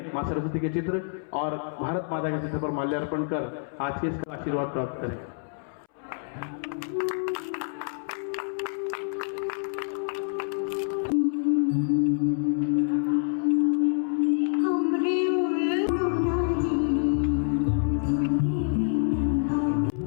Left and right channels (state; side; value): silent; right; 60 dB below the other